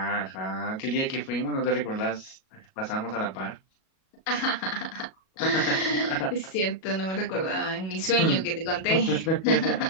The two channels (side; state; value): right; late; 37 ms